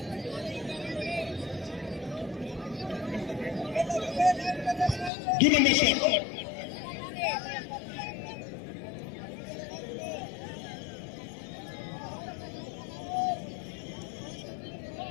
দুই নম্বর শট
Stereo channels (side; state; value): right; drops out; at 5.1 s